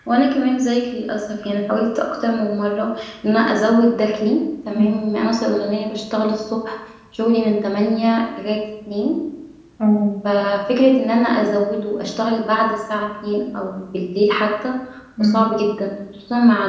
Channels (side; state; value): both; identical; correlation 1.00